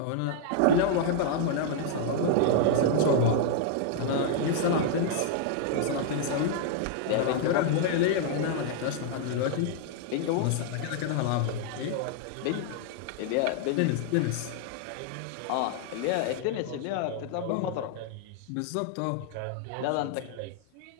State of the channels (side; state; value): both; different; correlation -0.01